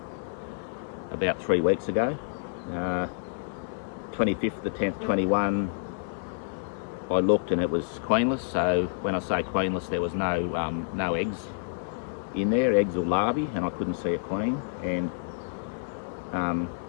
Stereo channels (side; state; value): right; silent; 59 dB below the other